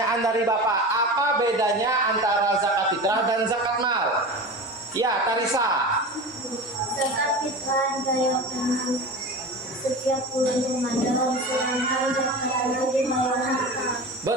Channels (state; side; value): normal; both; correlation 0.30